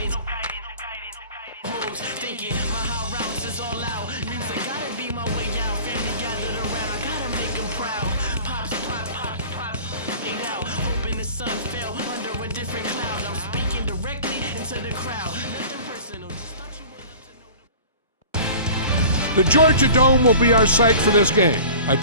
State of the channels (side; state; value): both; inverted; correlation -0.42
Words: Thinking my high routes is all out. Music gotta be my way out. Family gathered around, I gotta make them proud. Pops, get out. Hoping the sun fell under a different cloud. I'm speaking directly into the crowd. Nothing personal, just thought you would love to know. The Georgia Dome will be our site for this game. I